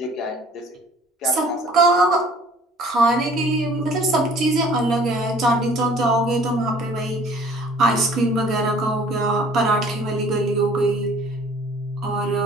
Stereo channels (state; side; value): normal; both; correlation 0.52